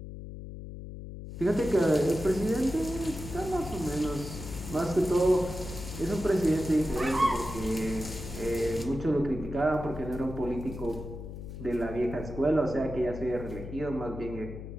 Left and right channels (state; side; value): noise; left; hum, 10 dB below the sound